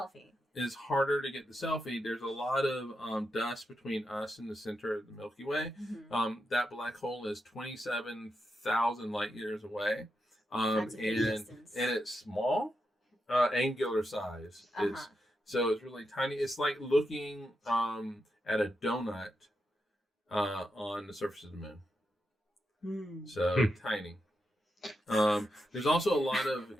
It's harder to get the selfie. There's a lot of dust between us and the center of the Milky Way. That black hole is 27,000 light years away. That's a big distance. And it's small, angular size. So it's really tiny. It's like looking at a donut on the surface of the moon. So tiny. There's also a lot of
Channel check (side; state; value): both; normal; correlation 0.86